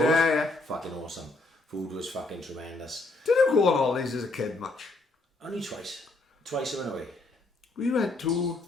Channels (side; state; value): right; quieter; 3.1 dB